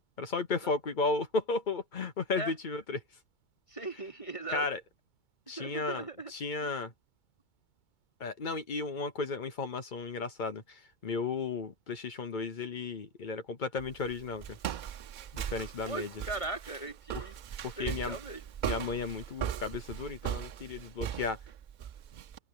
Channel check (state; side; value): late; right; 2.2 ms